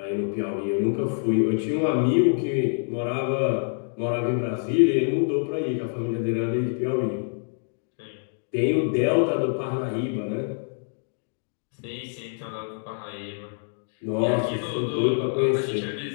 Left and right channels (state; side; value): silent; right; digital silence